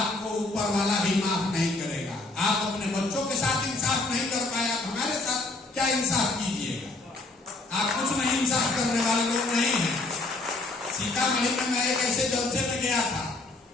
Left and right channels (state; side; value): quieter; right; 3.4 dB